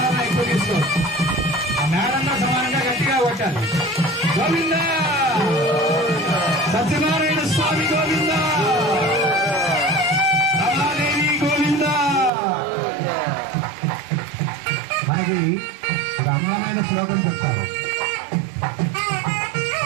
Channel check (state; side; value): drops out; left; at 12.3 s